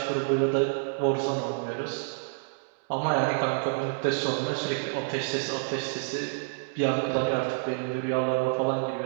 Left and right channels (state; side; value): silent; left; digital silence